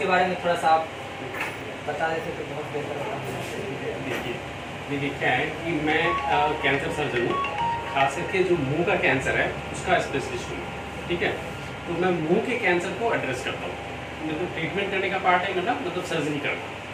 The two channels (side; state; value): both; identical; correlation 1.00